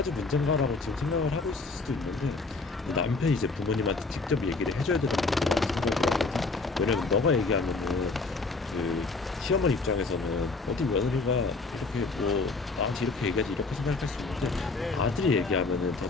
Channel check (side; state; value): right; quieter; 3.8 dB